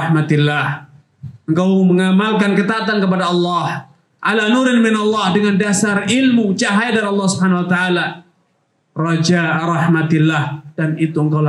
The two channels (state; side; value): identical; both; correlation 1.00